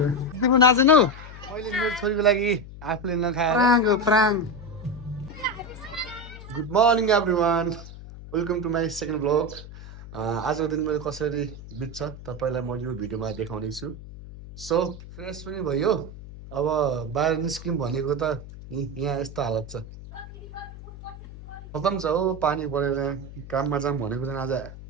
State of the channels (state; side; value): noise; left; hum, 14 dB below the sound